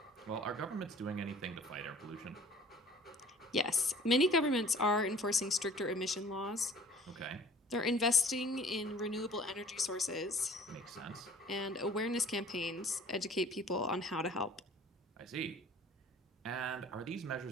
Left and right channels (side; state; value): both; normal; correlation 0.49